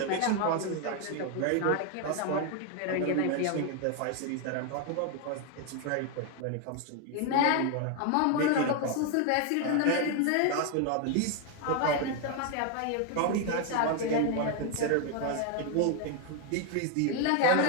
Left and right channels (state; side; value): different; both; correlation 0.01